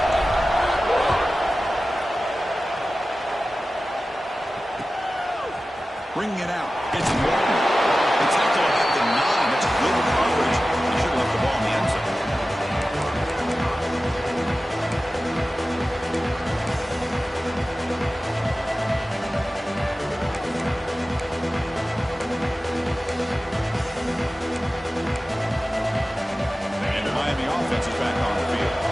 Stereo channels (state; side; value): normal; both; correlation 0.95